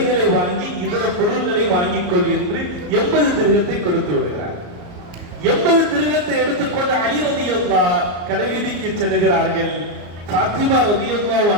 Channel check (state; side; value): late; left; 34 ms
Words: வாங்கி இதர பொருள்களை வாங்கிக் கொள் என்று 80 திருகத்தை கொடுத்து விடுகிறார். 80 திருகத்தை எடுத்துக்கொண்டு அலி ரலியல்லாஹு கடைவீதிக்கு செல்கிறார்கள். ஃபாத்திமா ரலியல்லாஹு